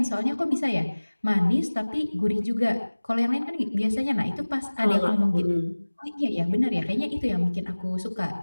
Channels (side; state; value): both; inverted; correlation -1.00